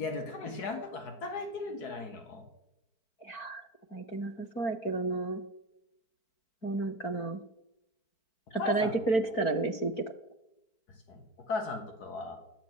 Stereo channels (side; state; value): right; late; 4.4 ms